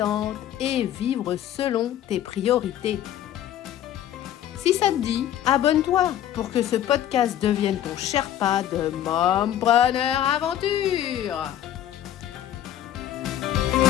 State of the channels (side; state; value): right; quieter; 11.5 dB